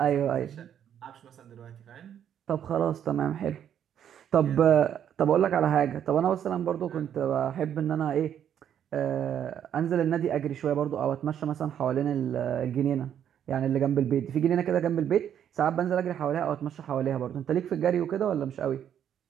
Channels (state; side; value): quieter; left; 9.5 dB